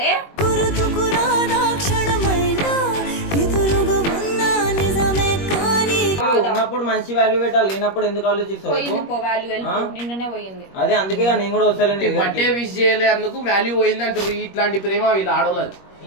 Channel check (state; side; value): late; right; 21 ms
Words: గుర్తుకురాదా క్షణమైనా ఎదురుగా ఉన్నా నిజమే కానీ ఉన్నప్పుడు మంచి వాల్యూ పెట్టాలి, లేనప్పుడు ఎందుకు ఆలోచిస్తావు? పోయింది పో వాల్యూ వెళ్ళిపో నిన్ననే పోయింది. అదే అందుకే నేను కూడా వస్తాను. బట్టే విష్ చేయలే అందుకు వాల్యూ పోయింది అంటారు. ఇట్లాంటి ప్రేమ వీళ్ళు ఆడోళ్ళది.